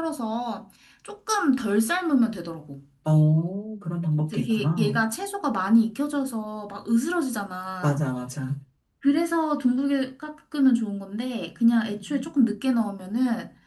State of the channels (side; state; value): both; identical; correlation 1.00